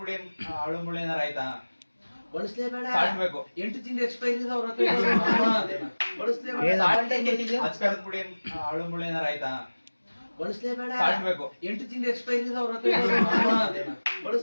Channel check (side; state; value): both; inverted; correlation -1.00